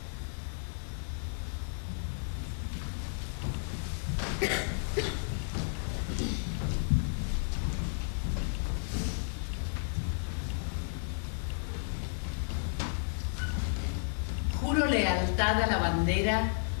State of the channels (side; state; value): right; silent; 56 dB below the other